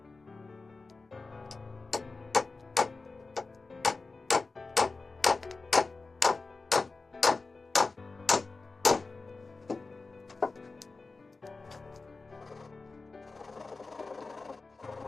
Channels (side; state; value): right; quieter; 3.8 dB